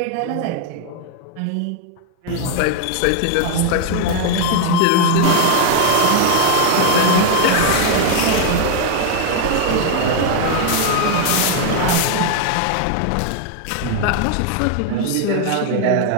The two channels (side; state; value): both; different; correlation 0.00